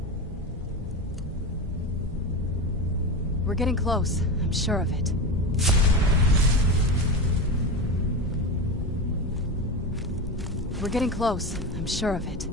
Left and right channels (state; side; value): normal; both; correlation 0.21